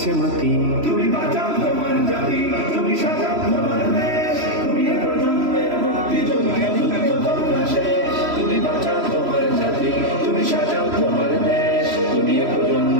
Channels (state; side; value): late; left; 3.1 ms